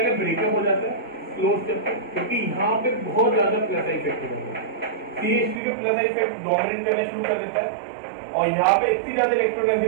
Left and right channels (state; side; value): drops out; left; at 5.6 s